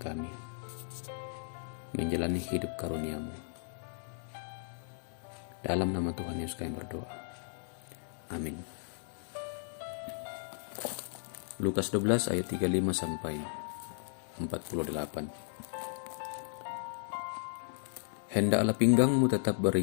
menjalani hidup karunia-Mu. Dalam nama Tuhan Yesus kami berdoa. Amin. Lukas 12 ayat 35 sampai 48. Hendaklah pinggangmu tetap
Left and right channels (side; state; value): right; silent; 54 dB below the other